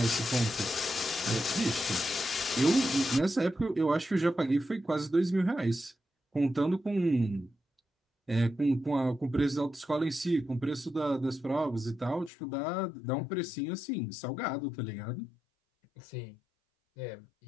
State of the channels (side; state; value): right; drops out; at 12.3 s